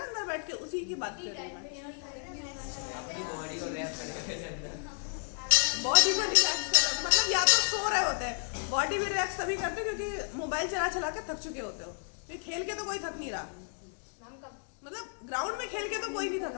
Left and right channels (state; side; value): silent; right; 56 dB below the other